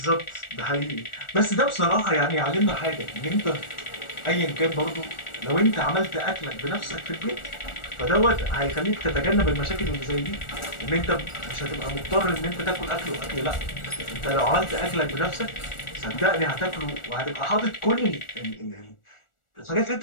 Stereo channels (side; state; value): right; late; 1.4 ms